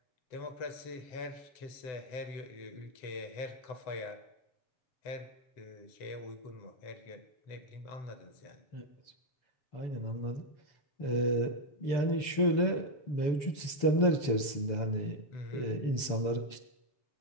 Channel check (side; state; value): right; late; 6.9 ms